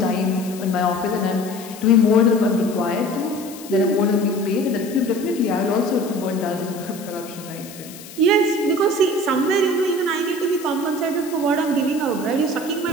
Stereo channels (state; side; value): noise; left; hiss, 16 dB below the sound